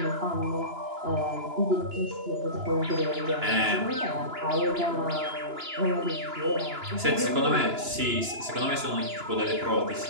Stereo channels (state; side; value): late; left; 2.9 ms